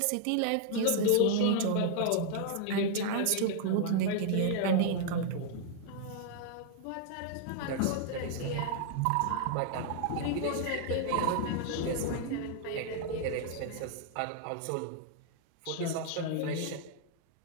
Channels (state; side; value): different; both; correlation 0.00